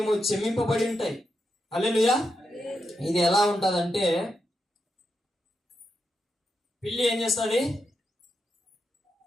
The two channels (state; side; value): normal; both; correlation 0.85